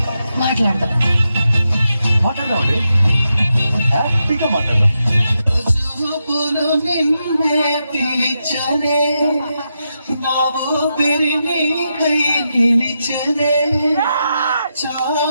మాట్లాడదాం. మాట్లాడదాం అండి, హ్యాపీగా మాట్లాడదాం.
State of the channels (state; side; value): inverted; both; correlation -0.86